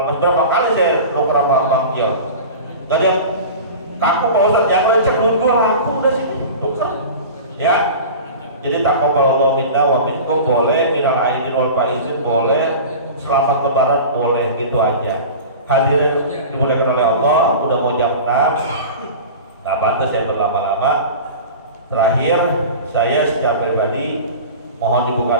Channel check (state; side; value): inverted; both; correlation -0.35